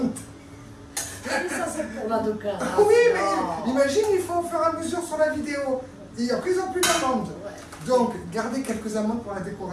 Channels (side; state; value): both; identical; correlation 1.00